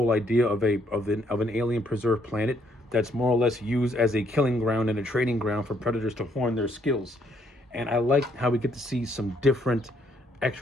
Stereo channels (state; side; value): normal; both; correlation 0.69